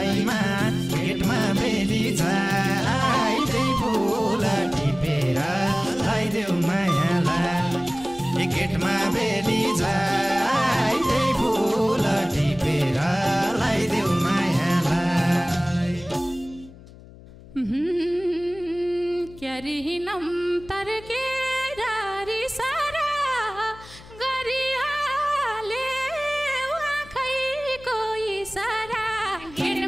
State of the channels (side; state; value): left; noise; hum, 20 dB below the sound